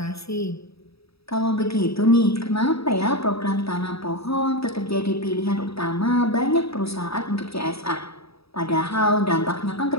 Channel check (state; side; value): late; right; 0.77 ms